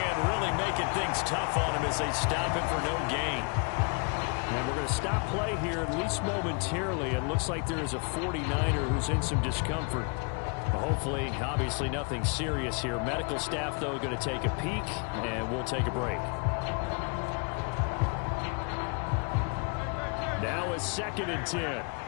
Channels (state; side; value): quieter; right; 36.2 dB